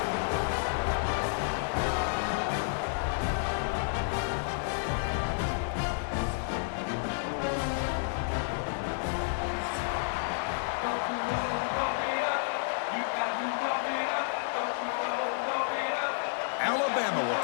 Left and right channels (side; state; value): right; silent; digital silence